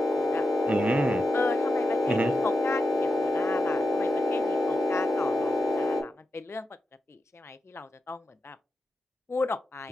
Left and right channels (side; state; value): both; normal; correlation 0.89